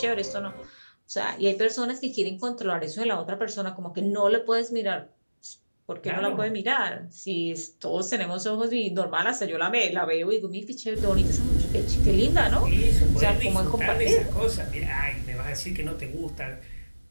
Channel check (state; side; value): inverted; both; correlation -1.00